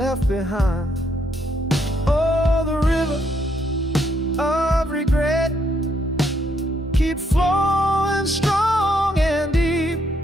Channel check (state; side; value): normal; both; correlation 0.74